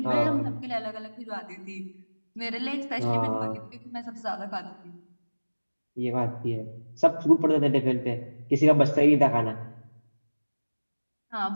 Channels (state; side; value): inverted; both; correlation -1.00